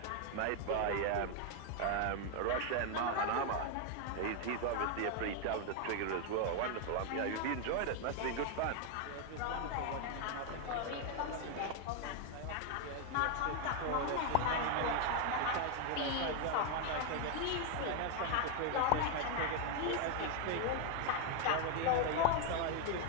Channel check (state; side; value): different; both; correlation 0.01